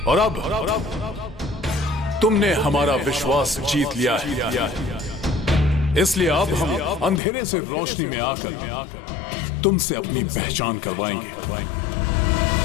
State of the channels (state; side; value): drops out; right; at 7.2 s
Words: और अब तुमने हमारा विश्वास जीत लिया है। इसलिए अब हम अंधेरे से रोशनी में आकर तुमसे अपनी पहचान करवाएंगे।